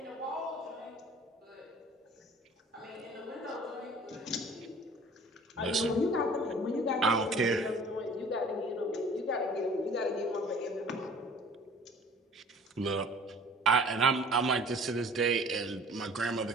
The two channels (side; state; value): both; normal; correlation 0.48